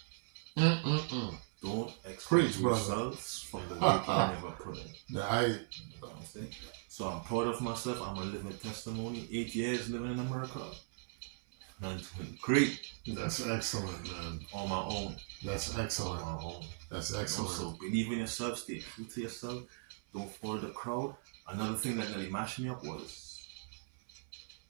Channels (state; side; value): silent; left; 52 dB below the other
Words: Don't expect results from the work you never put in. You know what I'm saying? So I'm proud of myself. I'm a living testimony. 8 years living in America. I'm doing great. That's excellent, man. On my own. That's excellent. On my own. That's excellent. So believe in yourself. Stay true to yourself. Don't follow the crowd. Another thing that really mashed me up was